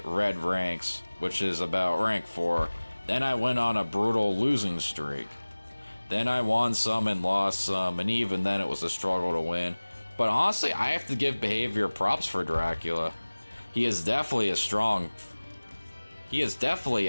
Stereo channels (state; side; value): inverted; both; correlation -1.00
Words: red ranks, which is about rank 4. Then I went on a brutal losing streak. Then I won some and lost some, and even then it was a struggle to win. But honestly, I have to give behavior props for Dracula. He is definitely a